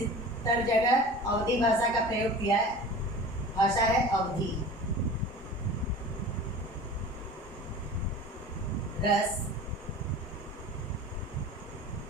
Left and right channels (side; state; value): both; normal; correlation 0.38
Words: जगह अवधी भाषा का प्रयोग किया है। भाषा है अवधी। रस,